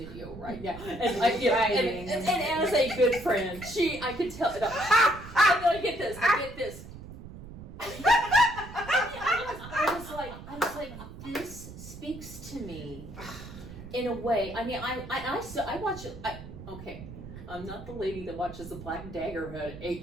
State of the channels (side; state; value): right; noise; rumble, 14 dB below the sound